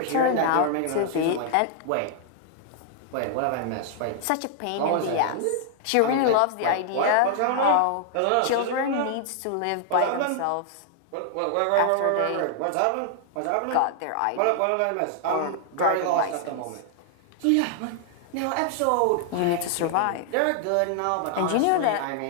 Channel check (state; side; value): different; both; correlation 0.00